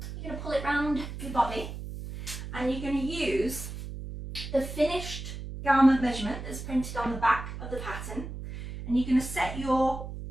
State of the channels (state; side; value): noise; right; hum, 9 dB below the sound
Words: going to pull it round your body, and you're going to use the finished garment measurement that's printed on the back of the pattern, and you're going to set your